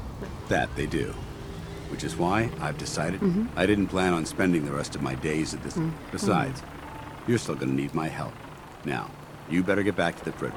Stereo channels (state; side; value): identical; both; correlation 1.00